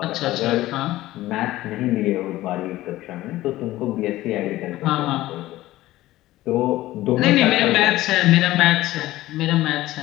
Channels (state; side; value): quieter; right; 16.3 dB